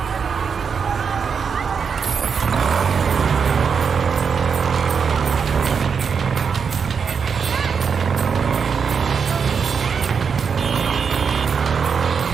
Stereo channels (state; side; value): quieter; left; 6.2 dB